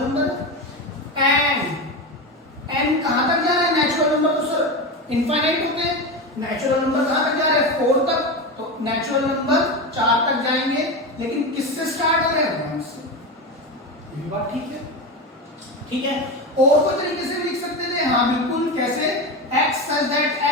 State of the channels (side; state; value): both; normal; correlation 0.19